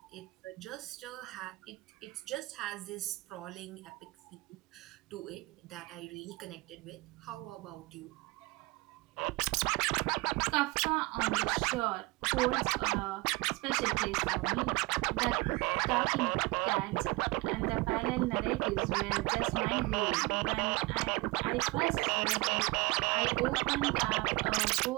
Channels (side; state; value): left; quieter; 23.6 dB